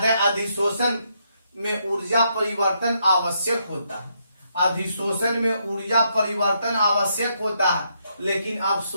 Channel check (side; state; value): both; inverted; correlation -0.77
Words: है अधिशोषण में ऊर्जा परिवर्तन आवश्यक होता है। अधिशोषण में ऊर्जा परिवर्तन आवश्यक होता है, लेकिन